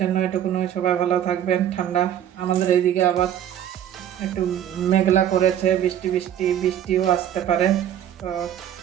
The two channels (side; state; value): left; quieter; 10.5 dB